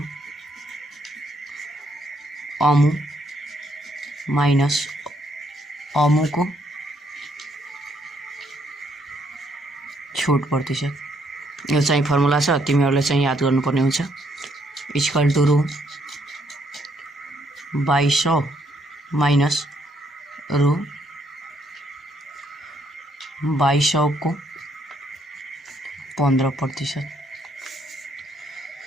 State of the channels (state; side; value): normal; both; correlation 0.71